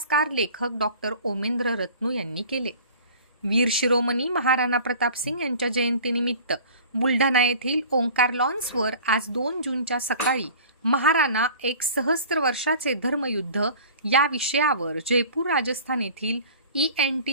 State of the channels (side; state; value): both; inverted; correlation -0.43